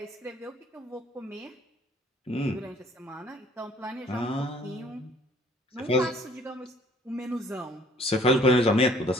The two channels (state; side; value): normal; both; correlation 0.56